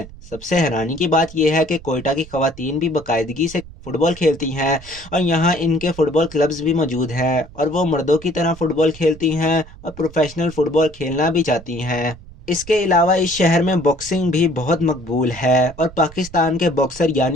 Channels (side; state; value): right; noise; rumble, 18 dB below the sound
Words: सबसे हैरानी की बात यह है कि कोयटा की ख़वातीन भी बाकायदगी से फ़ुटबॉल खेलती हैं और यहाँ इनके फुटबॉल क्लब्स भी मौजूद हैं और वो मर्दों की तरह फुटबॉल खेलती हैं और प्रोफेशनल फुटबॉल खेलना भी चाहती हैं। इसके अलावा इस शहर में बॉक्सिंग भी बहुत मकबूल है और पाकिस्तान के बॉक्सर